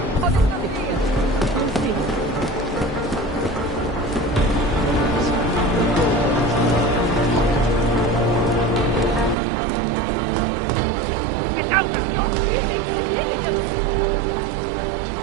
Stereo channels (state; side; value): drops out; left; at 9.3 s